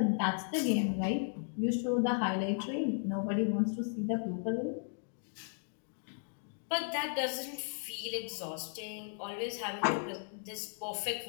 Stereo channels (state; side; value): silent; right; 54 dB below the other